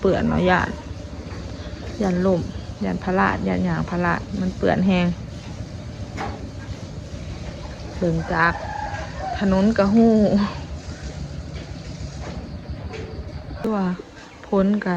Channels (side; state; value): both; identical; correlation 1.00